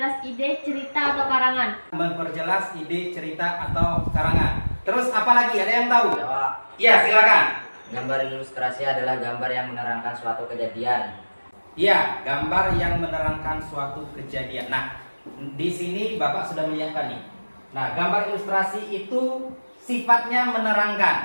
ide, cerita, atau karangan. Memperjelas ide, cerita, atau karangan. Terus apa lagi? Ada yang tahu? Ya, Pak. Iya, silakan. Gambar ilustrasi adalah gambar yang menerangkan suatu kejadian. Iya, gambar yang menerangkan suatu kejadian. Nah, di sini Bapak sudah menyiapkan nih. Nah, gambar ilustrasi itu sifatnya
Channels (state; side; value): inverted; both; correlation -1.00